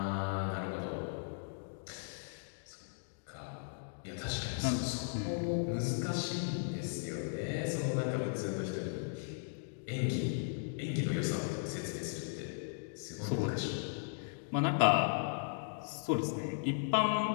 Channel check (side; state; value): right; silent; digital silence